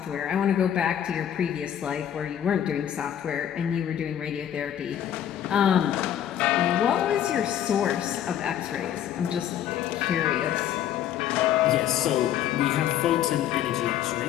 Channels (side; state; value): right; quieter; 10.5 dB